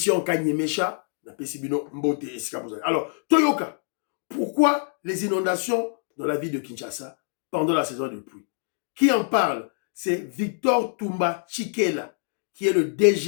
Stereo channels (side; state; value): right; silent; 59 dB below the other